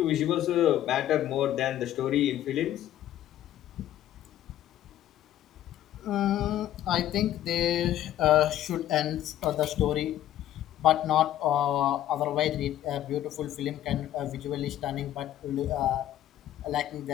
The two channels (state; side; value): quieter; right; 12.4 dB